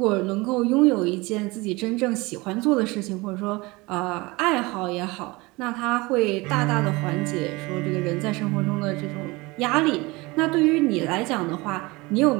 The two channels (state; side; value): quieter; left; 23.5 dB